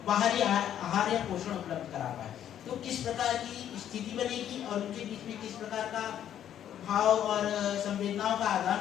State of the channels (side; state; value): right; quieter; 10.4 dB